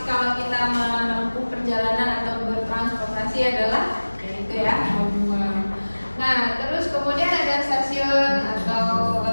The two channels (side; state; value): both; inverted; correlation -1.00